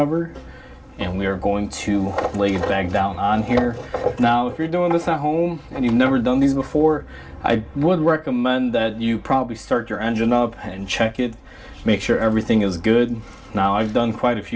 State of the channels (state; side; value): identical; both; correlation 1.00